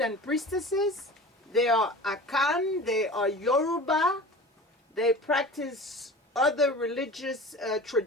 priestesses. They are Akan, they are Yoruba, they practice other religious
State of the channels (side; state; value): both; normal; correlation 0.36